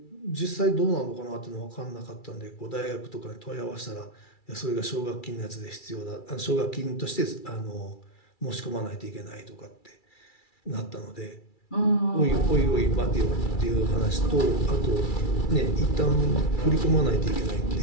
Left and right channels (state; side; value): late; right; 2.3 ms